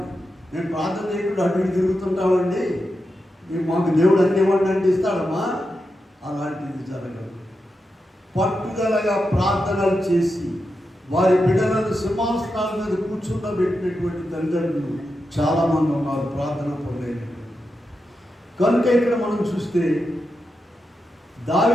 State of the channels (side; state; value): both; normal; correlation 0.88